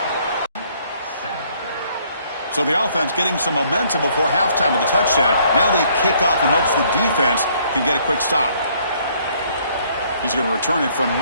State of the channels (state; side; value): inverted; both; correlation -0.64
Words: So the offense getting some momentum before halftime with the touchdown. Now they kick off in hopes the defense can get a quick stop. He's going to return it from